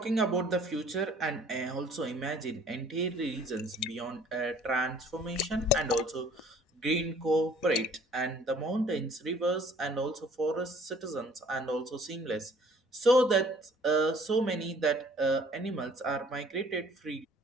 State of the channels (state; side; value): normal; both; correlation 0.56